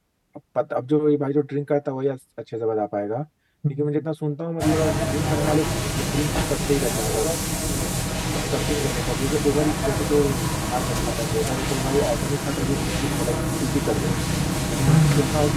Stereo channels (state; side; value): identical; both; correlation 1.00